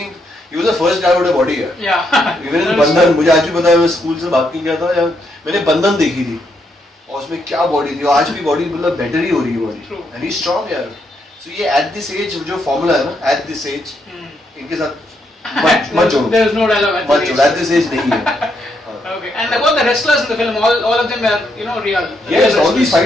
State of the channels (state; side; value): normal; both; correlation 0.77